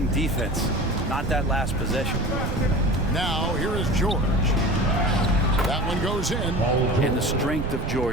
defense, not that last possession. Now, here is George. That one goes in. And the strength of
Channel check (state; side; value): noise; right; rumble, 3 dB below the sound